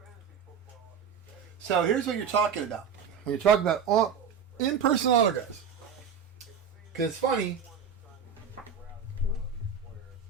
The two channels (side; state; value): left; quieter; 6.7 dB